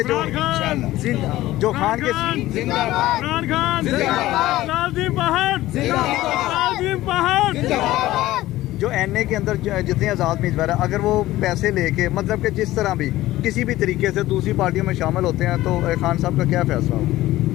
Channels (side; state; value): right; quieter; 16.2 dB